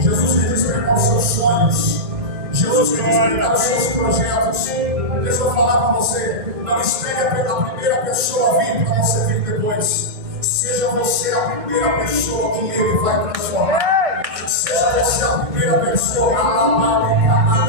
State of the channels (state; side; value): late; left; 1.6 ms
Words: quer despertar os seus sonhos. Jesus quer despertar os seus projetos. Deixa eu falar para você. Não espere a primeira pessoa vir para você vir depois. Seja você a primeira pessoa que Ele vai transformar. Seja você a primeira pessoa.